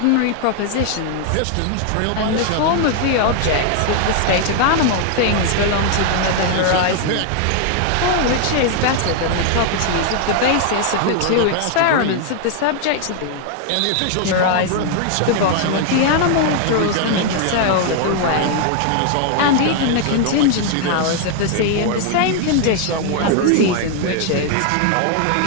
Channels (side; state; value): both; different; correlation 0.00